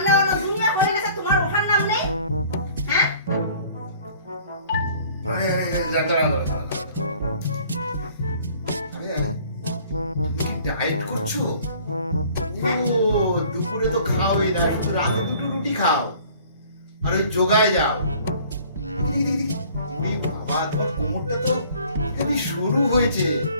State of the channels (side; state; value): both; inverted; correlation -0.52